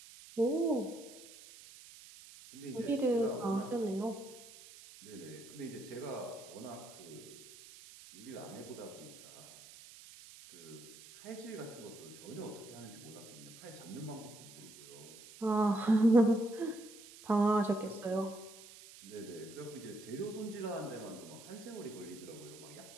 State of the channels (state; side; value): noise; right; hiss, 18 dB below the sound